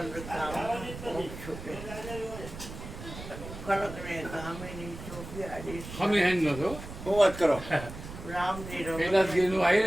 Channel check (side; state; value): right; noise; rumble, 11 dB below the sound